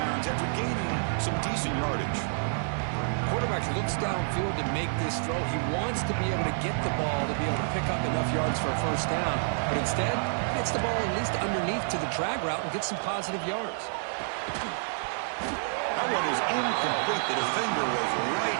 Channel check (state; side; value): silent; left; digital silence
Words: after gaining some decent yardage. Quarterback looks downfield to make this throw. He wants to be able to get the ball to be able to pick up enough yards for a 1st down. But instead, gets the ball at least underneath to the drag route and gets some positive yards. That one is incomplete. The defender was